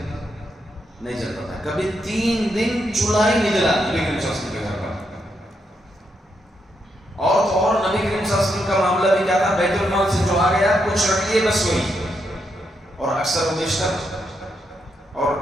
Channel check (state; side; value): normal; both; correlation 0.80